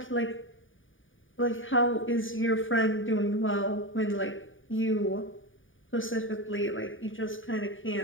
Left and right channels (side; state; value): right; late; 0.57 ms